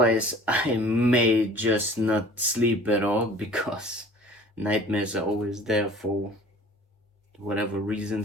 I may just not sleep at all because nightmares are always there for whatever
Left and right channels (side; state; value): both; normal; correlation 0.47